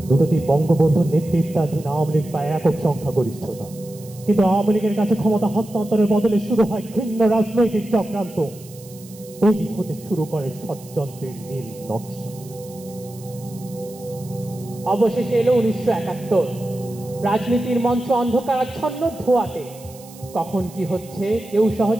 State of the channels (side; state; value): right; noise; hiss, 21 dB below the sound